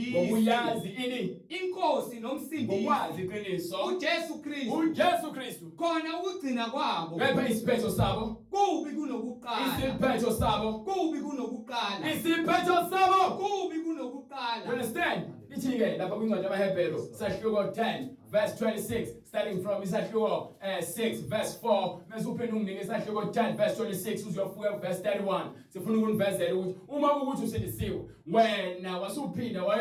Ngokuyazi ini, Inkosi nomsindisi. ngokwazi iqiniso uJesu Kristu. uJesu Kristu. Khona ukugcina kwabo. Kepha isiphetho sabo, Kubi kunokuqala. isiphetho sabo, Kubi kunokuqala. isiphetho sabo. Kubi You kunokuqala. understand? Ithi-ke lapha kwincwadi yamaHebheru sahluko 10 verse 26, starting from isahluko 6 verse 4, mase uphinde unginike isahluko 10 verse 26 uziyofika verse 31. Sifuna ukunivezela ukuthi uma ukuthi usindisiwe, wena wasuphinda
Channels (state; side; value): identical; both; correlation 1.00